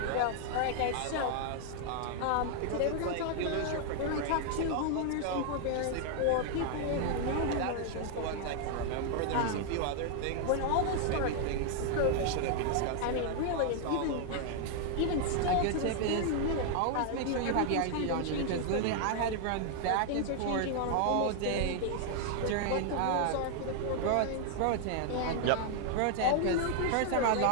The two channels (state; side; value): different; both; correlation 0.00